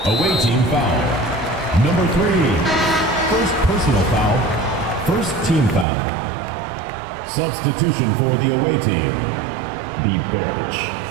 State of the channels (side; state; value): left; drops out; at 5.9 s